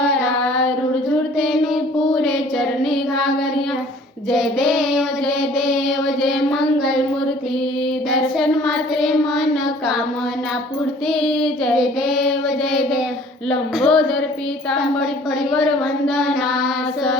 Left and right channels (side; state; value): both; normal; correlation 0.52